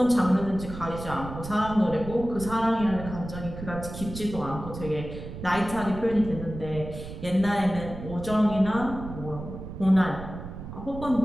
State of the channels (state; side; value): noise; right; rumble, 10 dB below the sound